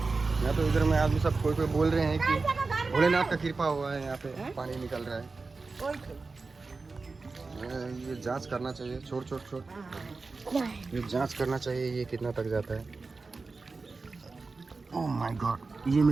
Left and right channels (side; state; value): left; quieter; 4.0 dB